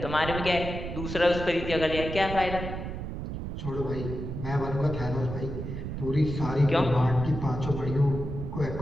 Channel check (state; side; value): noise; right; rumble, 6 dB below the sound